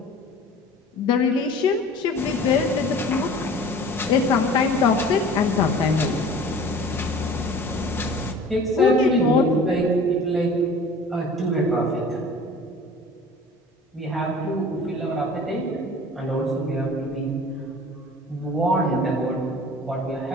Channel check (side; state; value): both; normal; correlation 0.44